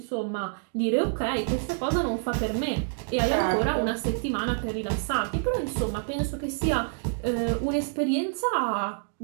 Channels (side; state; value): left; silent; digital silence